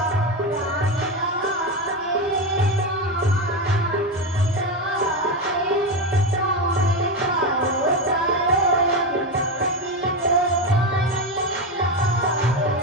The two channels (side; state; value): both; normal; correlation 0.14